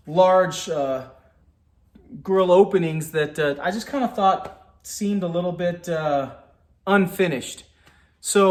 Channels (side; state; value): both; identical; correlation 1.00